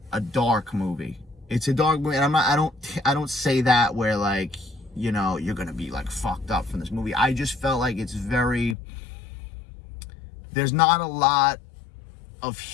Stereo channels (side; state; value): right; drops out; at 8.8 s